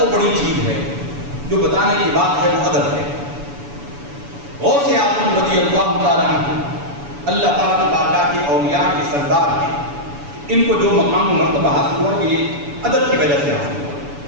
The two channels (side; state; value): left; late; 7.0 ms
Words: بڑی چیز ہے جو بتانے کی بات ہے, وہ ادب ہے. غوث اعظم رضی اللہ تعالیٰ عنہ, اللہ تعالیٰ کی بارگاہ کے اولیاء کے سردار ہیں, ان کو جو مقام و مرتبہ حاصل ہوا یہ ادب کی وجہ سے حاصل ہوا.